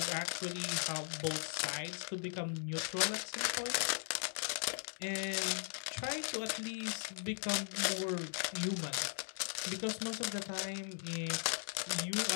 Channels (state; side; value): silent; right; 52 dB below the other